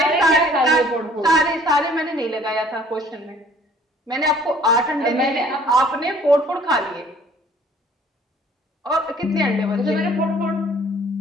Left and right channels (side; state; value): both; normal; correlation 0.55